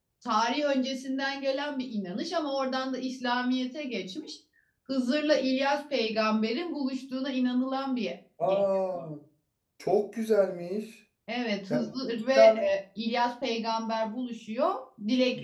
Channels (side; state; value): both; identical; correlation 1.00